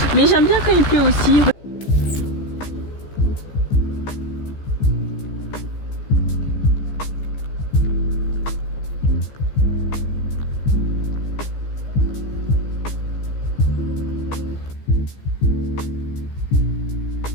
Mais j'aime bien quand il pleut aussi.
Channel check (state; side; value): late; right; 15 ms